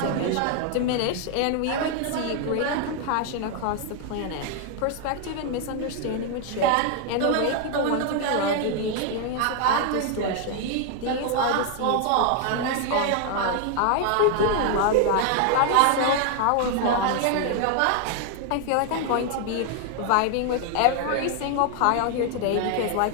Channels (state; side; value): different; both; correlation 0.00